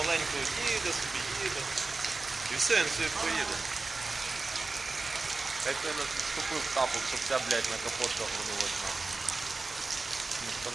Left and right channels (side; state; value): left; quieter; 3.7 dB